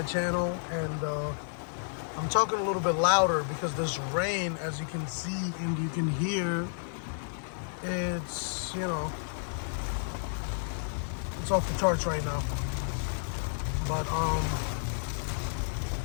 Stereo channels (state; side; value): silent; right; 57 dB below the other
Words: channel, and I'm talking a little bit louder because this rain, as you can see and you can hear, it's, it's off the charts right now. But